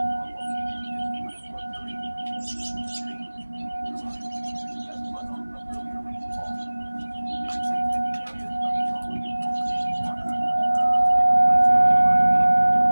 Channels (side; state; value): both; inverted; correlation -1.00